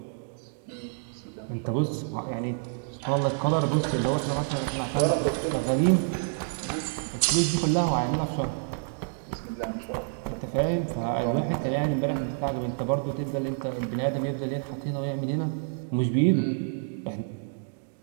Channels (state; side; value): silent; left; digital silence